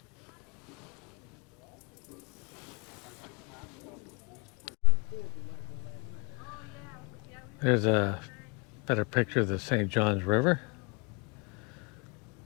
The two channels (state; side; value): quieter; right; 32.4 dB